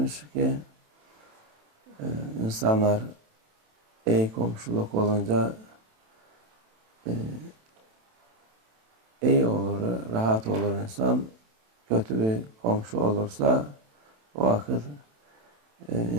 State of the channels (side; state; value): left; late; 27 ms